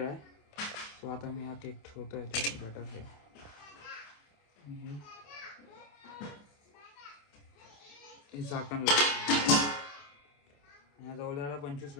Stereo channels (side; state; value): right; late; 27 ms